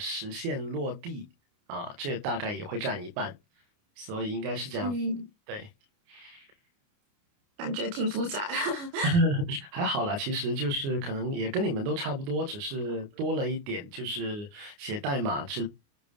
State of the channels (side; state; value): left; late; 29 ms